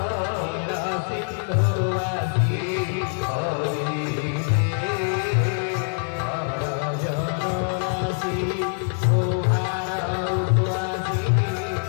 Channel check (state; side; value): silent; right; 57 dB below the other